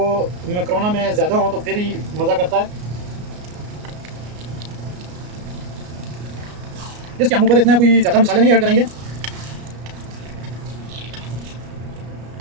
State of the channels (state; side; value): late; left; 33 ms